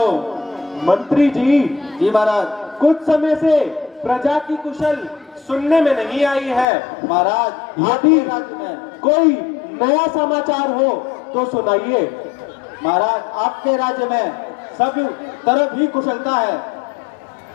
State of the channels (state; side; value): drops out; right; at 6.7 s